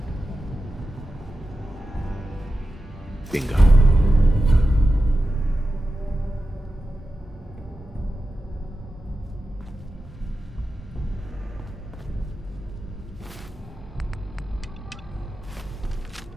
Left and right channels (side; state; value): both; normal; correlation 0.92